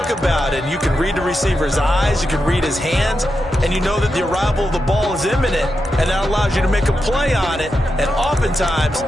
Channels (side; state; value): both; normal; correlation 0.87